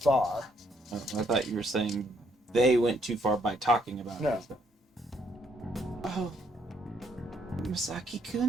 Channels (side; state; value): both; normal; correlation 0.70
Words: Oh, I thought you were saying they went too far by talking about No. it. Oh,